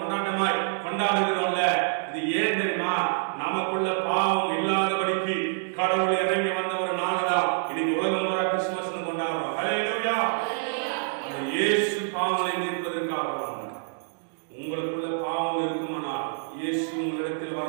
கொண்டாடுகிறோம்ல. இது ஏன் தெரியுமா? நமக்குள்ள பாவம் இல்லாதபடிக்கு கடவுள் இறங்கி வந்த ஒரு நாள்தான் இன்னைக்கு உலகம் பூரா கிறிஸ்துமஸ் கொண்டாடுறோம். ஹல்லேலூயா. அந்த இயேசு பாவங்களை நீக்குவதற்காக வந்தார். உங்களுக்குள்ள பாவம் இருக்குமானால் இயேசு உங்களிடத்தில்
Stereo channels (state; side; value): silent; left; digital silence